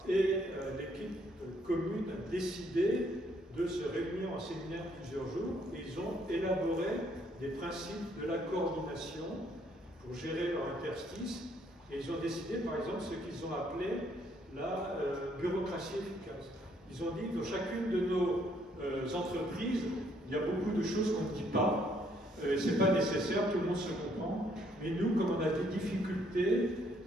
Et l'équipe commune a décidé de se réunir en séminaire plusieurs jours et ils ont élaboré des principes de la coordination pour gérer leur interstice et ils ont décidé par exemple ce qu'ils ont appelé la bureaucratie efficace. Ils ont dit que dans chacune de nos entreprises, il y a beaucoup de choses qu'on ne dit pas, c'est pas nécessaire, tout le monde se comprend, mais nous, comme on a des difficultés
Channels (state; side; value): normal; both; correlation 0.68